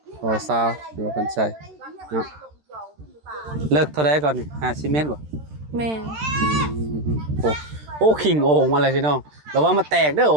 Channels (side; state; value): left; late; 13 ms